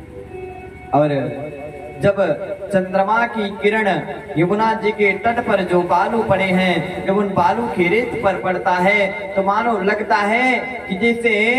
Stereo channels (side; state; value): both; identical; correlation 1.00